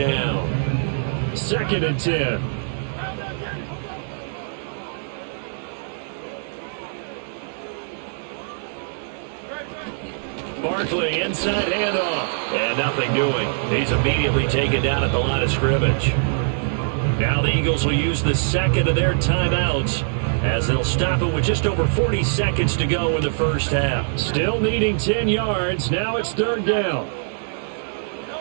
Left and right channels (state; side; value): silent; left; digital silence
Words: 2nd and 10. Barkley inside handoff. And nothing doing. He's immediately taken down at the line of scrimmage. Now the Eagles will use the second of their timeouts as they'll stop it with just over 40 seconds to go in the first half. Still needing 10 yards. Now it's third down.